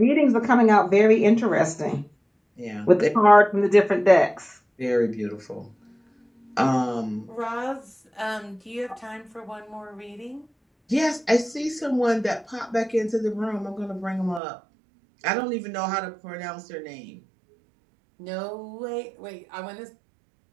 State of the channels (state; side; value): drops out; left; at 14.4 s